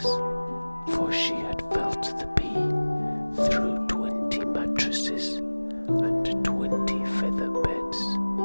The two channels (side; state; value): both; inverted; correlation -1.00